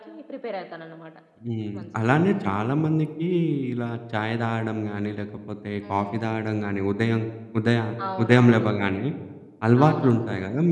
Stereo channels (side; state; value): both; identical; correlation 1.00